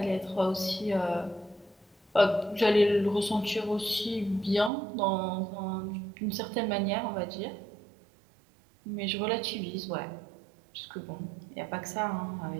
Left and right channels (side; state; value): left; drops out; at 4.7 s